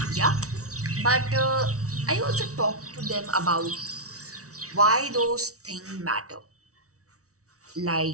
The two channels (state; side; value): late; left; 0.65 ms